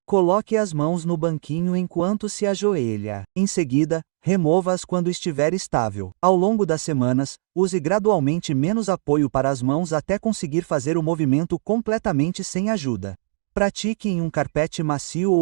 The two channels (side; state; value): left; silent; digital silence